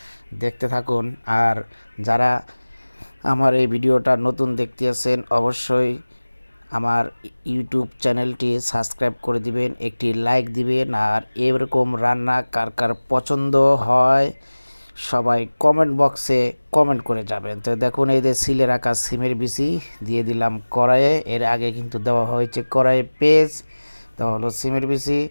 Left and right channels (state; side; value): inverted; both; correlation -1.00